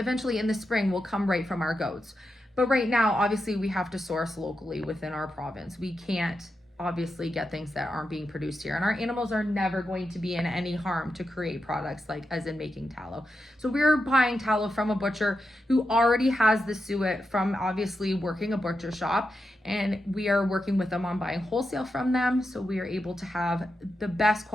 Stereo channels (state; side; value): normal; both; correlation 0.88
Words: in the spring will come right from our goats. But right now, obviously, we have to source locally within our province. We can't obviously get things that aren't being produced here, and our animals are never going to be in any harm to create products like as in making tallow. So we're buying tallow from a butcher who already has the suet from obviously working a butcher shop, and we are working with them on buying wholesale from them, so we are able to have the best